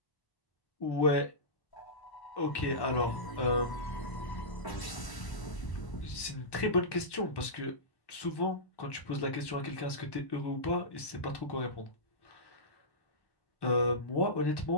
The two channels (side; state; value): right; late; 1.1 ms